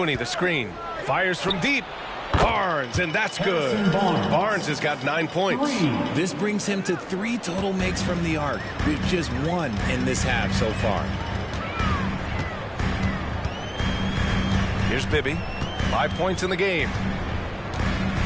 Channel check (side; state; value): both; identical; correlation 1.00